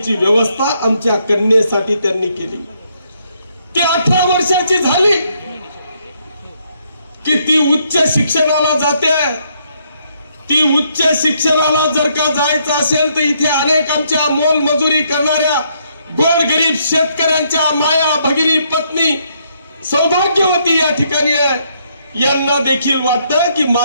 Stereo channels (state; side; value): inverted; both; correlation -0.72